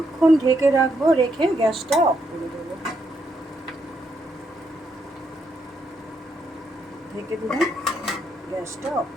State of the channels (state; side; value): normal; both; correlation 0.77